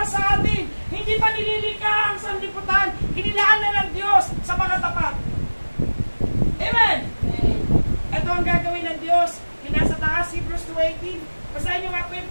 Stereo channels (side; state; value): both; inverted; correlation -1.00